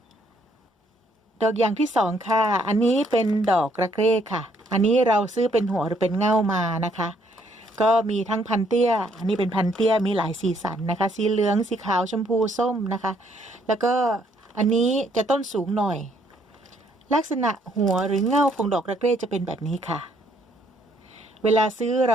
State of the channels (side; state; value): both; normal; correlation 0.68